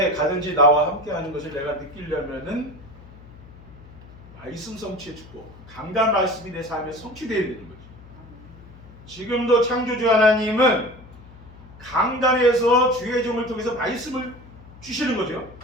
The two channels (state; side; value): noise; left; hum, 20 dB below the sound